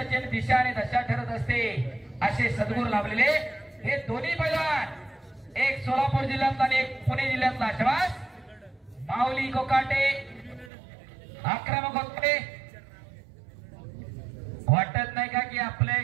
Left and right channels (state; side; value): drops out; left; at 10.7 s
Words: दिशा आणि दशा ठरत असते. असे सद्गुरू लाभलेले हे दोन्ही पैलवान, एक सोलापूर जिल्ह्यातला आणि एक पुणे जिल्ह्यातला. शबास माऊली कोकाटे आक्रमक होते. वाटत नाही का की आपल्या